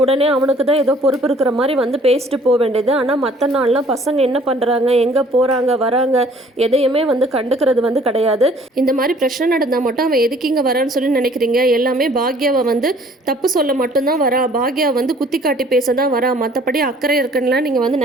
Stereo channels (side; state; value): both; normal; correlation 0.56